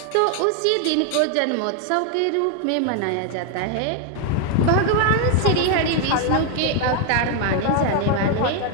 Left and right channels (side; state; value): both; different; correlation 0.00